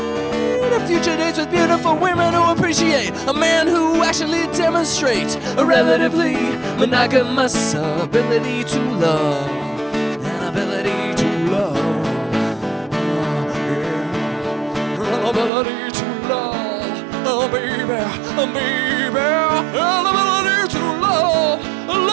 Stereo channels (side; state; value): left; drops out; at 15.5 s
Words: to future dates with beautiful women who appreciate a man who actually demonstrates a relatively monogamous ability to love. An ability to love. Yeah. Ability to love. Oh baby, baby, ability to love,